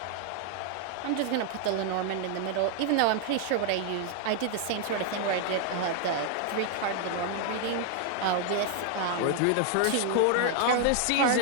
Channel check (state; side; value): different; both; correlation 0.00